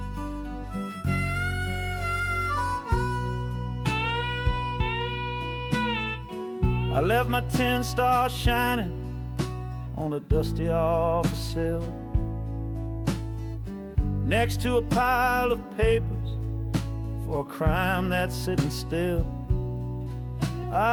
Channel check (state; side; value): identical; both; correlation 1.00